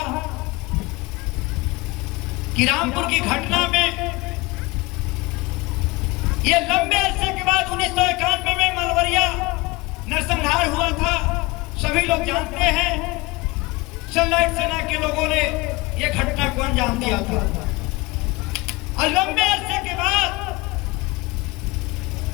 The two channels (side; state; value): right; quieter; 23.1 dB